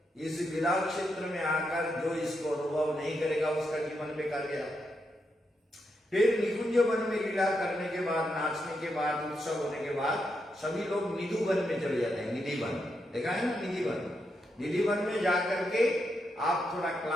इस लीला क्षेत्र में आकर जो इसको अनुभव नहीं करेगा उसका जीवन बेकार गया। फिर निकुंज वन में लीला करने के बाद, नाचने के बाद, उत्सव होने के बाद सभी लोग निधि वन में चले जाते हैं। निधि वन देखा है ना, निधि वन। निधि वन में जाकर के आप थोड़ा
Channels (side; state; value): both; normal; correlation 0.83